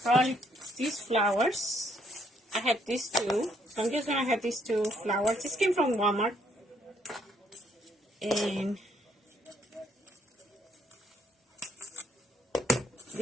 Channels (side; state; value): both; normal; correlation 0.69